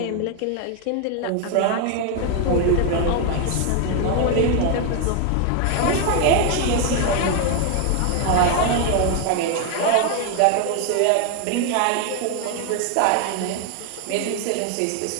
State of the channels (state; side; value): different; both; correlation 0.01